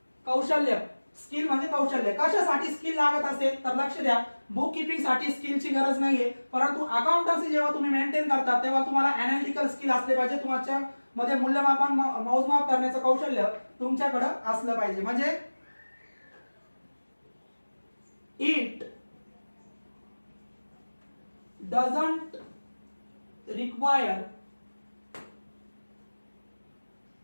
कौशल्य. स्किल म्हणजे कौशल्य. कशासाठी स्किल लागत असेल तर लक्ष द्या, बुक किपिंग साठी स्किलची गरज नाहीये, परंतु अकाउंटन्सी जेव्हा तुम्ही मेंटेन करता तेव्हा तुम्हाला अनालिटिकल स्किल असले पाहिजे. तुमच्या मध्ये मूल्यमापन मोजमाप करण्याचं कौशल्य तुमच्याकडे असलं पाहिजे. म्हणजे it doesn't require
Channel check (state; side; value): inverted; both; correlation -1.00